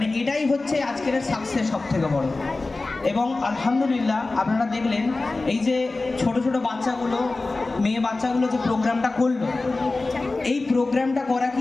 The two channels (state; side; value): quieter; right; 3.3 dB